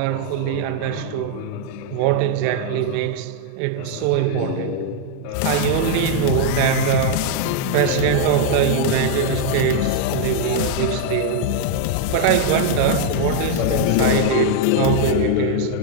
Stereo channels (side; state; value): both; different; correlation 0.00